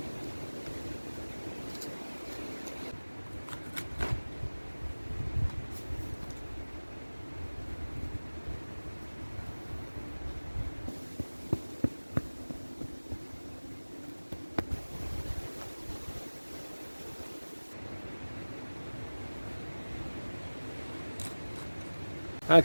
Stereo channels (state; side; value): inverted; both; correlation -1.00